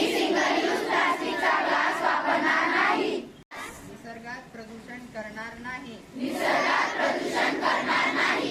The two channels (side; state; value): both; identical; correlation 1.00